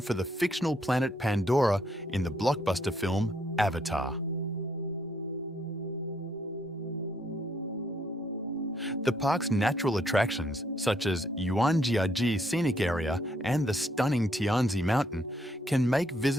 the fictional planet Pandora in the blockbuster film Avatar. The park's natural attractions, such as Yuanjiaji Scenic Area and the stunning Tianzi Mountain, can make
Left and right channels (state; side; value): normal; both; correlation 0.71